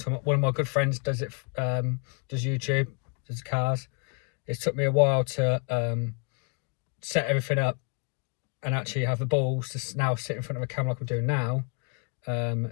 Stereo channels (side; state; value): right; quieter; 33.8 dB